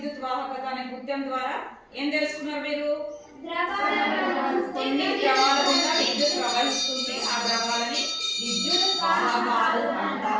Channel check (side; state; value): both; identical; correlation 1.00